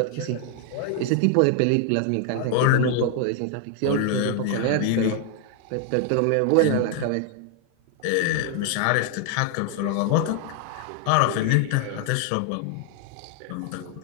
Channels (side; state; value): both; different; correlation 0.00